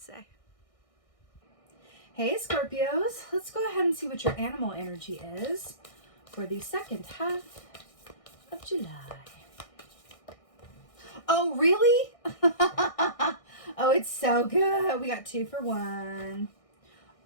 say. Hey Scorpios, let's go ahead and see what your animal energy is for the second half of July. Oh, really? Oh, it's so good. We got 2 for 1.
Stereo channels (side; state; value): right; late; 1.6 ms